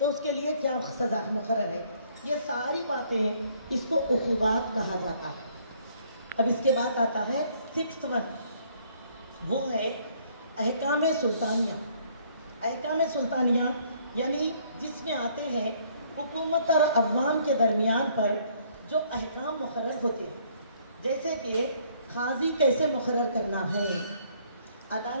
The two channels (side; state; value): both; inverted; correlation -0.63